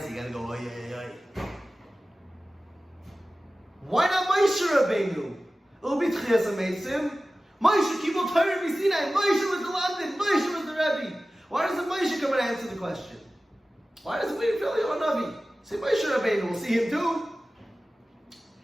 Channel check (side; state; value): both; normal; correlation 0.96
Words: you gotta go oy oy oy. Why not Moshe Rabbeinu? It'll be Tchias HaMeisim. Moshe Kibul Torah B'Sinai. Moshe was the London. Moshe was the Rebbe. Why doesn't Moshe come and answer the question? Why doesn't we feel Eliyahu Navi? Say Moshe Rabbeinu, we'll see him too.